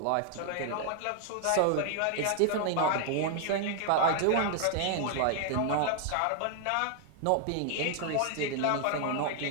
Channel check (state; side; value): different; both; correlation 0.00